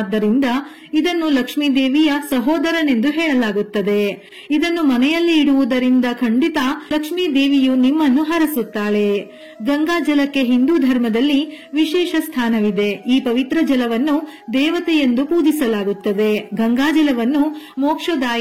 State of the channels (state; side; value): identical; both; correlation 1.00